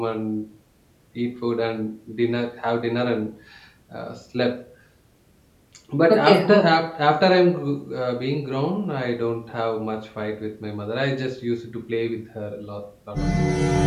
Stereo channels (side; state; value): both; identical; correlation 1.00